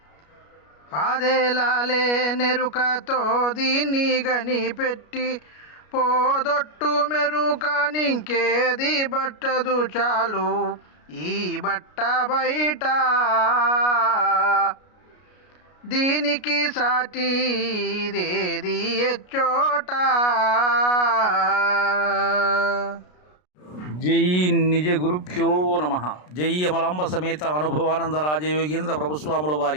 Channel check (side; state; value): right; late; 33 ms